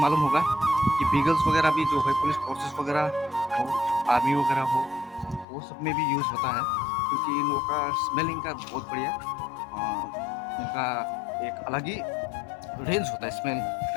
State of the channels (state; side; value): drops out; right; at 5.5 s